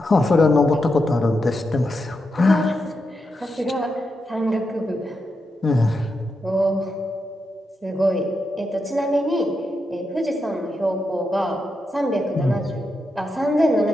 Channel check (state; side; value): normal; both; correlation 0.85